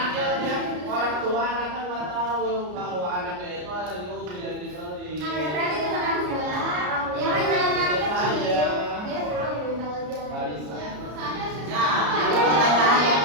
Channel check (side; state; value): left; late; 33 ms